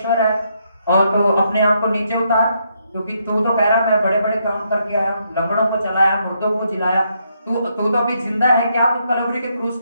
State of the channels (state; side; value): inverted; both; correlation -0.76